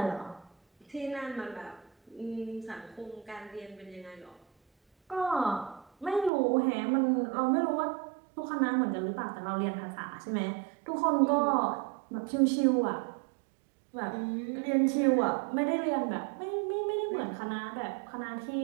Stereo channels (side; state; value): left; drops out; at 6.3 s